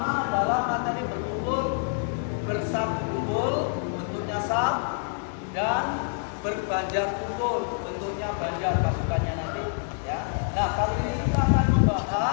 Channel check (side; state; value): right; silent; digital silence